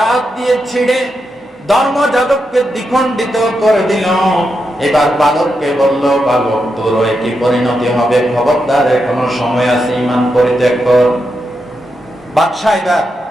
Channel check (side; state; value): both; normal; correlation 0.85